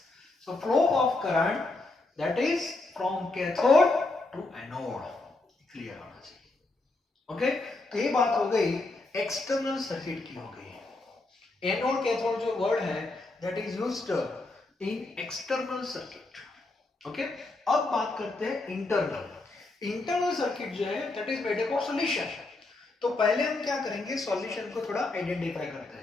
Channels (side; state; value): right; quieter; 3.1 dB